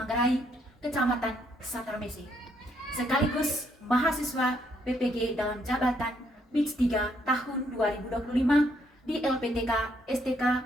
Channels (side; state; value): both; normal; correlation 0.72